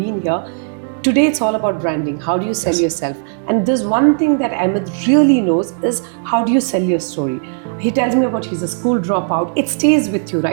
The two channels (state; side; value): silent; left; 65 dB below the other